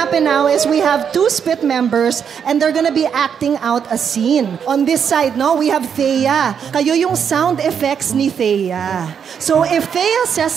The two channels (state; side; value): quieter; left; 7.5 dB